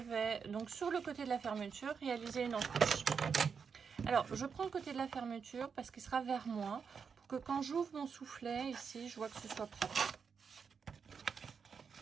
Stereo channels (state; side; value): quieter; left; 6.1 dB